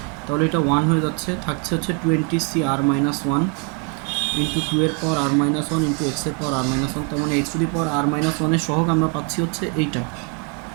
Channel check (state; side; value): quieter; left; 34.1 dB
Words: তাহলে এটা 1 হয়ে যাচ্ছে, থাকছে হচ্ছে 20CR-1 ইন্টু 2 এর পাওয়ার r-1 ইন্টু x এর পাওয়ার r-1। তার মানে x to the power r-1 এর সহগ আমরা পাচ্ছি হচ্ছে এইটা।